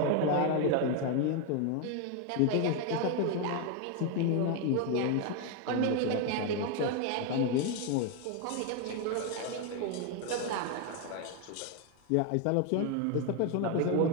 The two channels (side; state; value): both; different; correlation 0.01